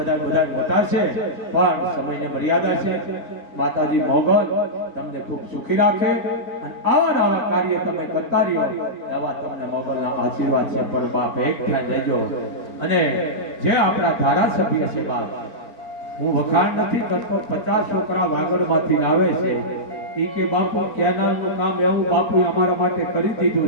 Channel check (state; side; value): late; right; 4.5 ms